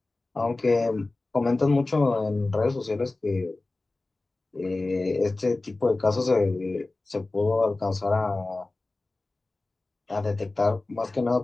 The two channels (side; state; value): right; quieter; 3.2 dB